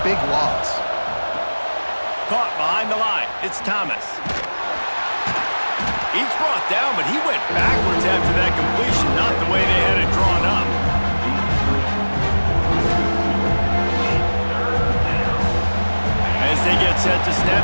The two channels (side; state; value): both; inverted; correlation -1.00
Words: big loss. Caught behind the line. It's Thomas. He's brought down, but he went backwards after that completion, not the way they had it drawn up. As they get set to